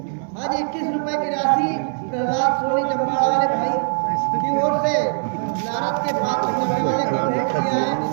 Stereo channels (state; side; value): silent; left; 60 dB below the other